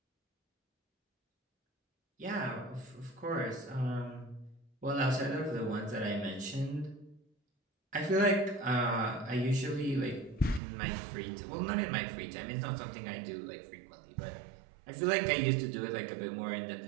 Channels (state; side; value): drops out; left; at 10.6 s